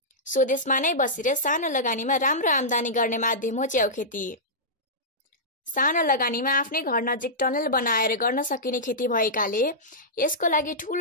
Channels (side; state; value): both; normal; correlation -0.13